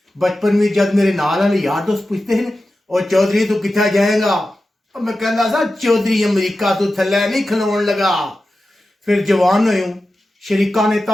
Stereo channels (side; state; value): both; normal; correlation 0.93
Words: बचपन में जब मेरे नाल वाले यार दोस्त पूछते हैं और चौधरी तू कितना जाएगा, और मैं कहता सा चौधरी अमरीका तू थले नहीं खलोन लगा। फिर जवान हो शरीका ने